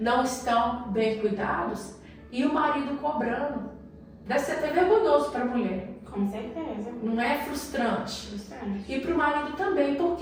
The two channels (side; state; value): both; identical; correlation 1.00